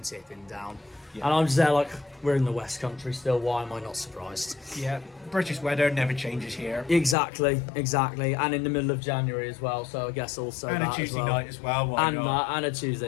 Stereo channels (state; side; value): drops out; right; at 7.2 s